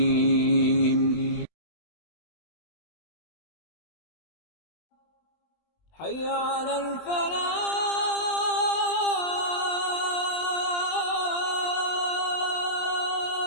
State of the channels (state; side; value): late; right; 20 ms